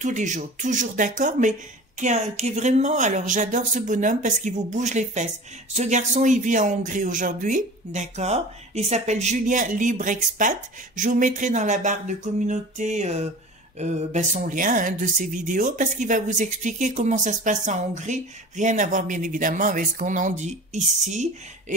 d'accord, mais qui est vraiment, alors j'adore ce bonhomme parce qu'il vous bouge les fesses. Ce garçon, il vit en Hongrie aujourd'hui, d'accord? Il s'appelle Julien Libre Expat. Je vous mettrai dans la barre de communauté son lien de ses vidéos parce qu'il va vous expliquer comment ça se passe en Hongrie. Rien à voir bien évidemment avec ce qu'on en dit ici.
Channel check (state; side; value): normal; both; correlation 0.38